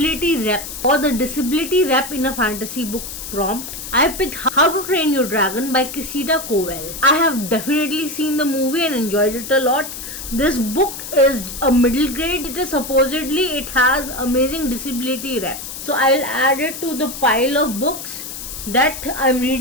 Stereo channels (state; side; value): noise; left; hiss, 9 dB below the sound